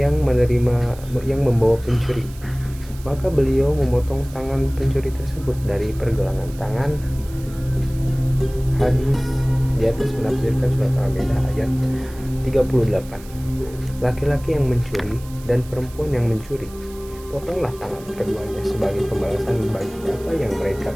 membawa pencuri, maka beliau memotong tangan pencuri tersebut dari pergelangan tangan. Hadis di atas menafsirkan surat Al-Maidah ayat 38. Laki-laki yang mencuri dan perempuan yang mencuri, potonglah tangan keduanya sebagai pembalasan bagi apa yang mereka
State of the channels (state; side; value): noise; right; hiss, 21 dB below the sound